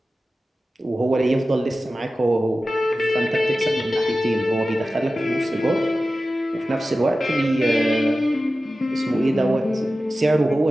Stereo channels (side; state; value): both; normal; correlation 0.95